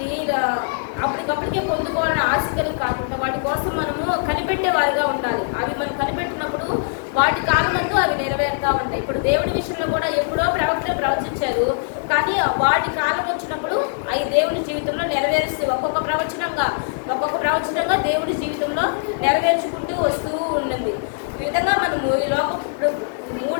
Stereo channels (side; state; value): right; silent; digital silence